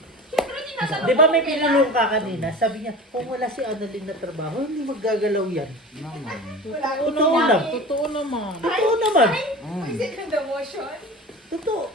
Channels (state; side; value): normal; both; correlation 0.35